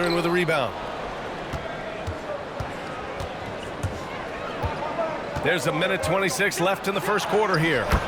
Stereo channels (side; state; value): both; identical; correlation 1.00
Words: with a rebound. There's a minute 26 left in the first quarter here.